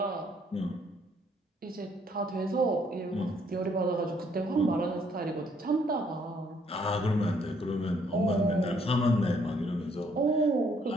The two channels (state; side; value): normal; both; correlation 0.67